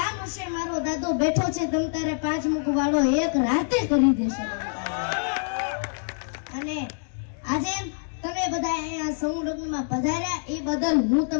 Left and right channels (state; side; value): silent; right; digital silence